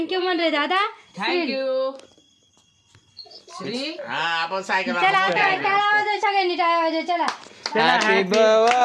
म्हण रे दादा. थँक्यू. हा आपण सायकल चला आता टाळा वाजव सगळ्यांनी टाळा वाजव. चला happy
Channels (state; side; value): identical; both; correlation 1.00